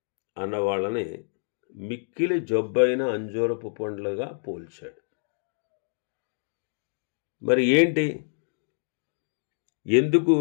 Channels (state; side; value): silent; right; digital silence